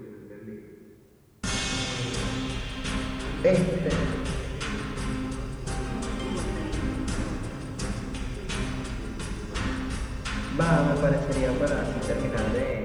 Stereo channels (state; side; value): identical; both; correlation 1.00